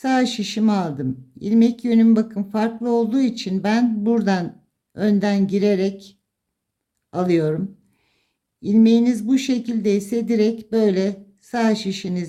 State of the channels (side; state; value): both; identical; correlation 1.00